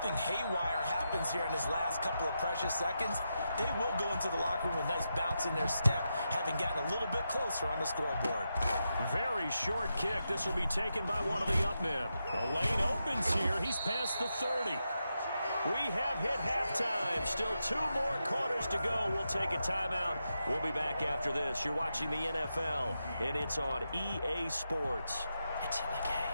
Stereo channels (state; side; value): inverted; both; correlation -0.87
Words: haywire happens here in his last couple of precious seconds, they will go into the locker room with a nice bounce in their step, having gotten a little bit closer on the scoreboard. Very short kick. This will be taken by one of the up men. The lane opens here. He's past the 30. We have hit halftime. Still 2 more quarters to go. We'll take a timeout. We'll be back after this. You're watching the NFL, and it's on EA Sports. It's in the